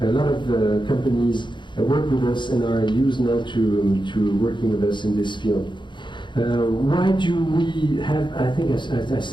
lot of companies work with us and are used now to working with us in this field. Why do we have, I think I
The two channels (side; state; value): right; late; 0.23 ms